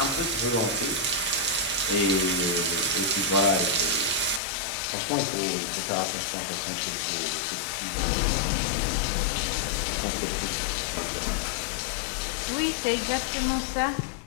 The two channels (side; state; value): right; drops out; at 4.4 s